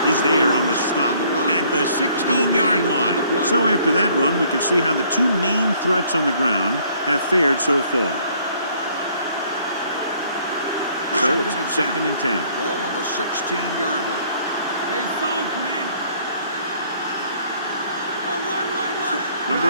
is there on the stop at the 16-yard line. So after that run, we can see how the two main threats on the ground have fared so far. So it's second and 10. Ball on the 16-yard line. Stay soft, man. One.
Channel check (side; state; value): both; inverted; correlation -0.61